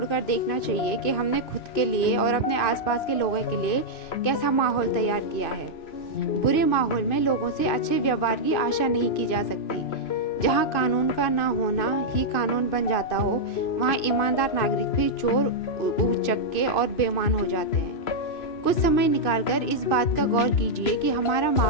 देखना चाहिए कि हमने खुद के लिए और अपने आसपास के लोगों के लिए कैसा माहौल तैयार किया है। बुरे माहौल में लोगों से अच्छे व्यवहार की आशा नहीं की जा सकती। जहाँ कानून का ना होना ही कानून बन जाता हो, वहाँ ईमानदार नागरिक भी चोर, उचक्के और बेईमान हो जाते हैं। कुछ समय निकालकर इस बात का गौर कीजिए कि हमारा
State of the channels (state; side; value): late; right; 2.5 ms